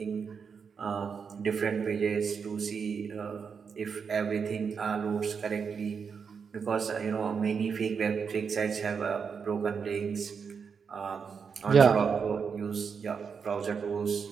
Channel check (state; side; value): quieter; left; 6.1 dB